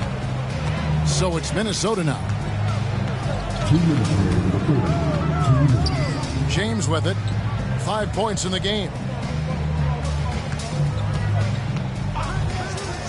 So it's Minnesota now. James with it. 5 points in the game.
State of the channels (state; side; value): identical; both; correlation 1.00